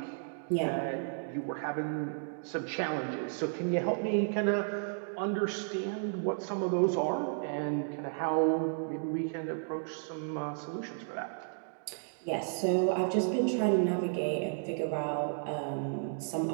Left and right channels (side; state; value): left; silent; digital silence